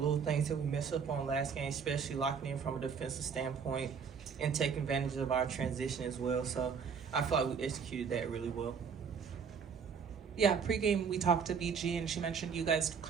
things that we messed up on last game, especially locking in from a defensive standpoint and taking advantage of our transition as well. So I feel like we executed that really well. Yeah, pregame we talked to BG and she mentioned you guys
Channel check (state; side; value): quieter; left; 6.3 dB